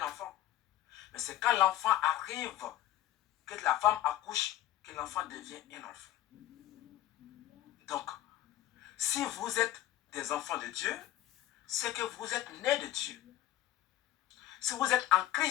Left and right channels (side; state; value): right; quieter; 13.6 dB